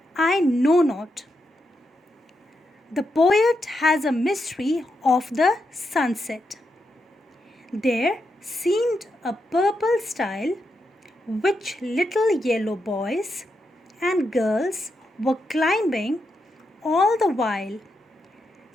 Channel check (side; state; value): both; normal; correlation 0.84